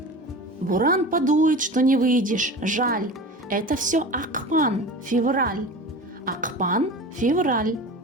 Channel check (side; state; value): both; normal; correlation 0.34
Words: Буран подует, что не выйдешь, жаль. Это все ақпан, февраль. Ақпан, февраль.